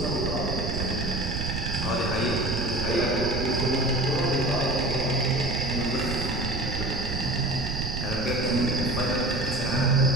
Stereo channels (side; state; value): right; noise; rumble, 4 dB below the sound